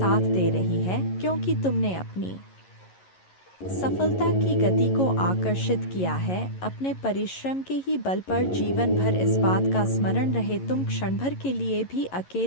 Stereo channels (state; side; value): late; right; 11 ms